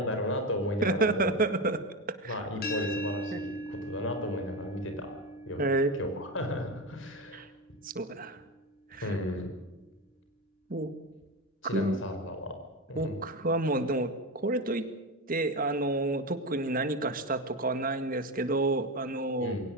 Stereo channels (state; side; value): normal; both; correlation 0.18